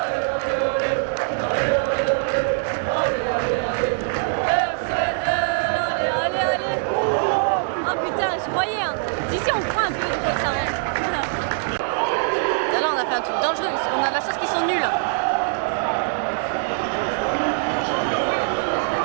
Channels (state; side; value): silent; left; digital silence